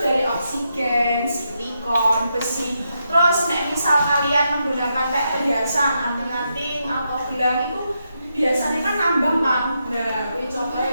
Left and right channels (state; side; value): inverted; both; correlation -0.83